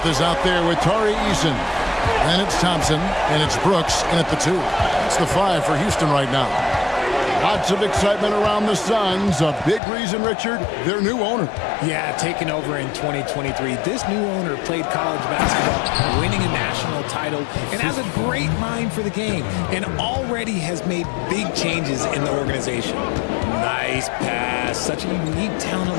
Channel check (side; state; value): right; drops out; at 9.8 s